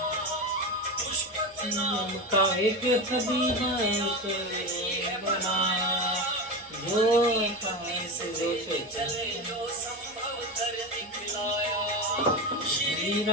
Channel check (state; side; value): normal; both; correlation 0.21